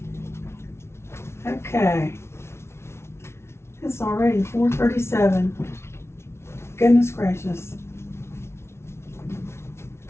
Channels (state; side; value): late; right; 0.13 ms